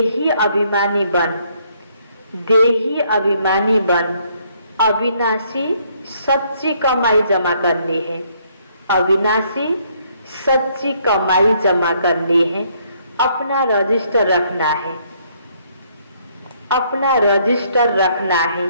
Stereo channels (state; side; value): inverted; both; correlation -0.68